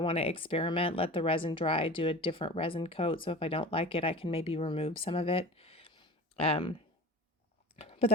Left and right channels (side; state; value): both; normal; correlation 0.36